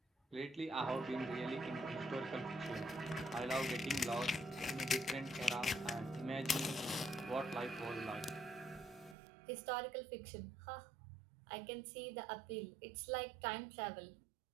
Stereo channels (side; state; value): left; drops out; at 9.2 s